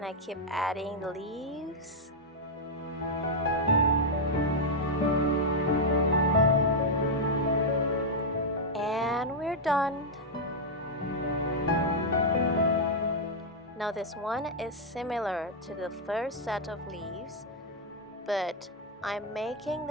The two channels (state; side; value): normal; both; correlation -0.03